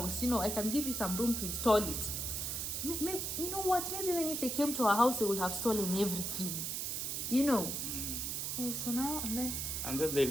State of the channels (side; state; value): right; noise; hiss, 2 dB below the sound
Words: You know, I can give you some room to install it." Maybe, you know what? Maybe even if they came to our house, they would have stolen everything. You know. So now and then they